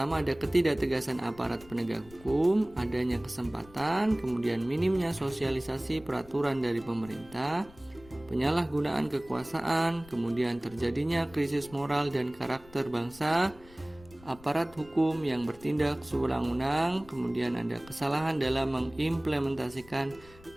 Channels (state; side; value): noise; left; rumble, 22 dB below the sound